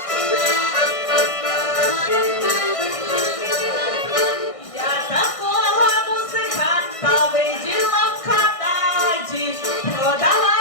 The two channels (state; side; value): late; right; 1.6 ms